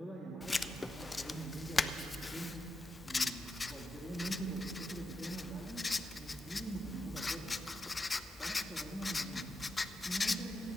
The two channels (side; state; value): both; normal; correlation 0.87